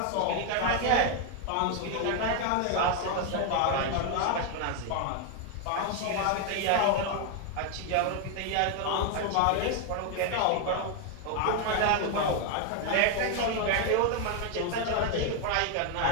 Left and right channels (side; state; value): both; different; correlation 0.01